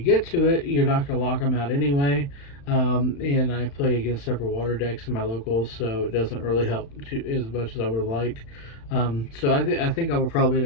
to it, you're not going to lock them out anyway. And I play against several water decks in my locals, so it doesn't really help as much as I would have liked. So I think I would probably end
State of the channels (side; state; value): right; late; 35 ms